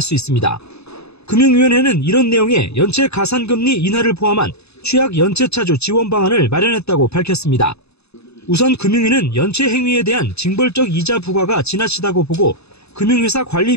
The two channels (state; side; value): late; right; 0.79 ms